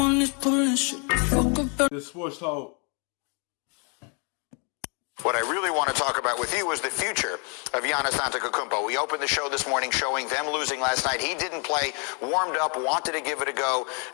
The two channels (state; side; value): quieter; right; 37.2 dB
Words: is pulling shit the fuck up. The sports talk. What I really want to talk about with you is the future of Giannis Antetokounmpo. We opened the show this morning showing them losing last night. He didn't play, warmed up, wanted to give it a go,